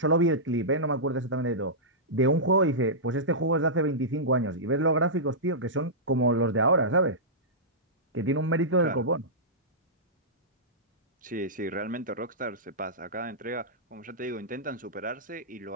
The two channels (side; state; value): both; normal; correlation -0.15